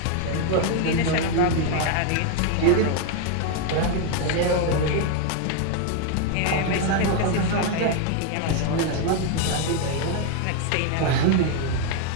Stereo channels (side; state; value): both; different; correlation 0.01